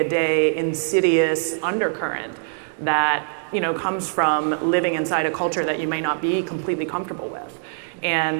insidious undercurrent that, you know, comes from living inside a culture that you may not be completely comfortable with.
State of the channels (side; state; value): left; silent; digital silence